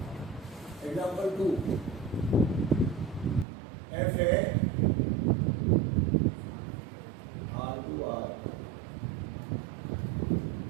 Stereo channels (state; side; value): drops out; left; at 3.5 s